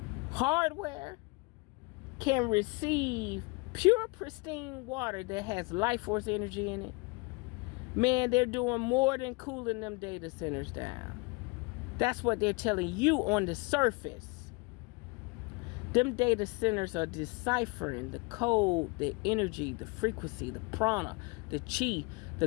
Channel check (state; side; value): quieter; right; 27.4 dB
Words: hardware can receive pure, pristine water that has life force energy in it? Man, they're doing more than cooling them data centers down. That's what they're telling you on the surface. Them data centers are deciphering the code, the energy, the frequency, the prana, the chi,